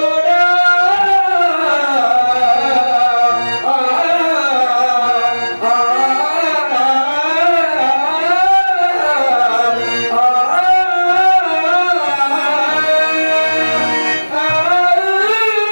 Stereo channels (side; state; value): both; inverted; correlation -1.00